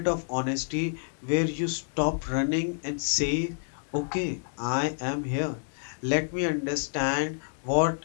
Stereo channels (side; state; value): right; silent; digital silence